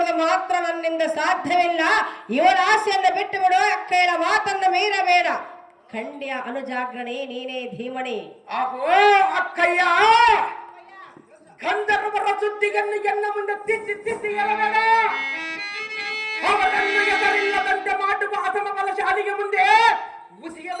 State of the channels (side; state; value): both; identical; correlation 1.00